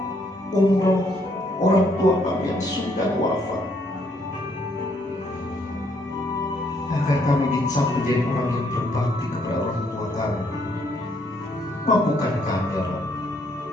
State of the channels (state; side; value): normal; both; correlation 0.70